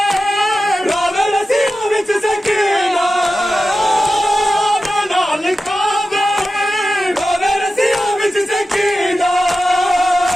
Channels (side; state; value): both; normal; correlation 0.93